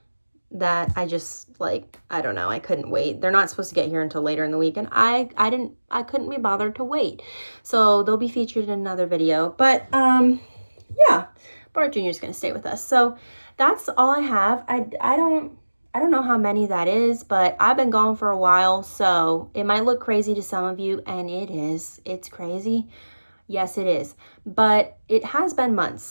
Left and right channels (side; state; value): both; inverted; correlation -1.00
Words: that I just, like, I don't know, I couldn't wait. They're not supposed to get here until later in the week, and I couldn't be bothered to wait. So they'll be featured in another video. But yeah, Bart Jr. is going to stay with us. So that's all I have. I don't know how many that is, but I've been gone for a while, so it might look crazy to some of you, and it is. It's crazy. Yes, it is. But it has been